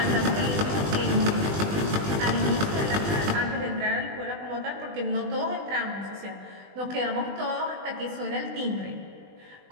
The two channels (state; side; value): late; left; 20 ms